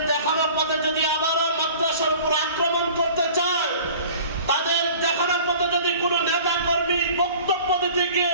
দেখানো পথে যদি আবারও মাদ্রাসার উপর আক্রমণ করতে চায়, তাদের দেখানো পথে যদি কোন নেতা কর্মী বক্তব্য দিতে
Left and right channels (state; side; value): inverted; both; correlation -0.45